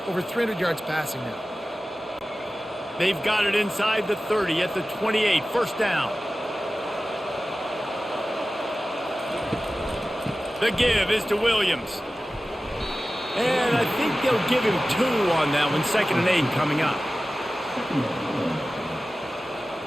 Over 300 yards passing now. They've got it inside the 30 at the 28. First down. The give is to Williams. And I think they'll give him 2 on that one. 2nd and 8 coming up.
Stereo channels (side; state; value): both; normal; correlation 0.96